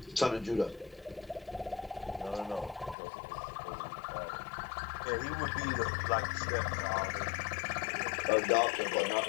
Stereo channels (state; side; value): drops out; right; at 3.0 s